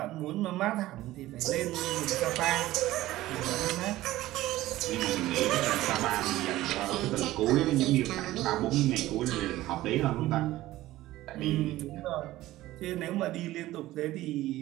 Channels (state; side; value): quieter; left; 16.2 dB